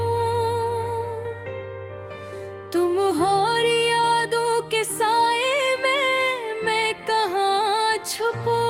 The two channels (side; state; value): both; identical; correlation 1.00